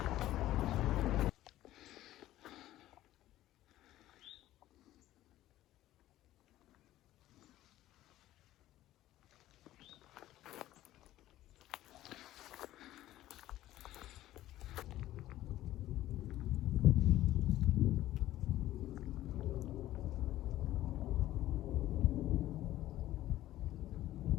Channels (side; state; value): right; quieter; 14.5 dB